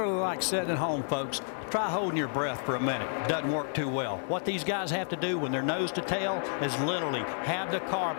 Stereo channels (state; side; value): silent; right; digital silence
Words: like sitting at home, folks. Try holding your breath for a minute. Doesn't work too well. What these guys have to do when they're nose to tail is literally have the car